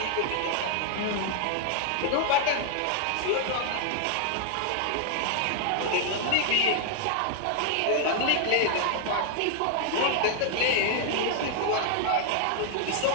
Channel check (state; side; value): different; both; correlation 0.00